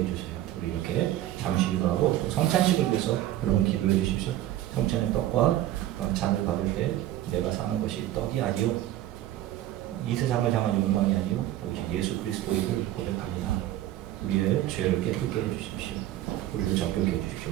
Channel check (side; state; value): left; quieter; 13.8 dB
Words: 우리 이렇게 잠시 기도하고 또 성찬식을 위해서 여러분 기도해 주십시오. 성찬의 떡과 잔을 받을 때 내가 사는 것이 떡이 아니요 이 세상을 향한 욕망이 아니요 오직 예수 그리스도의 일을 고백하리라. 우리의 죄를 깨끗게 해주십시오. 우리를 정결케